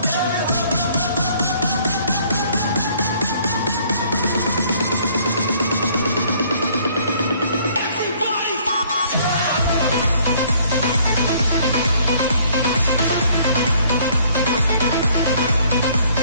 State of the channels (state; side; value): inverted; both; correlation -0.61